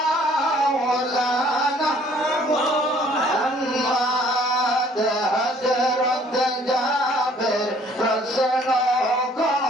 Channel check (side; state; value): both; normal; correlation 0.59